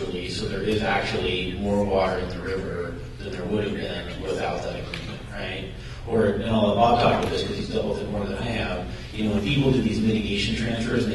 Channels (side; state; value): both; identical; correlation 1.00